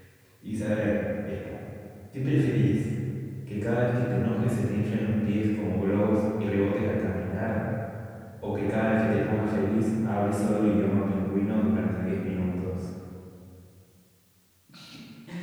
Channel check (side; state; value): both; identical; correlation 1.00